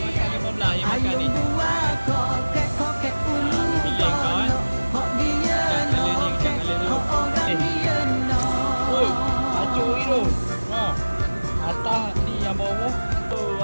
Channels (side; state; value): both; inverted; correlation -1.00